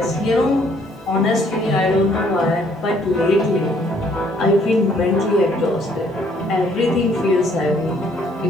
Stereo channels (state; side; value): normal; both; correlation 0.64